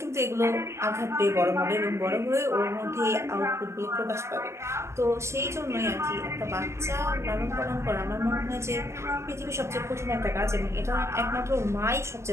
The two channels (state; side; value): late; left; 0.13 ms